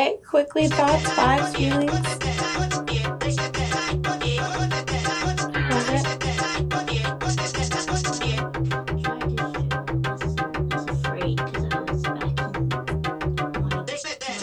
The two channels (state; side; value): identical; both; correlation 1.00